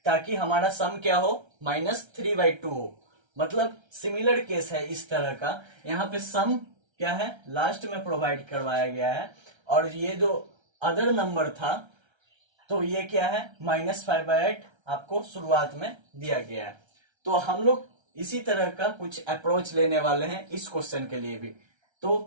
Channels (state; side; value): late; left; 1.3 ms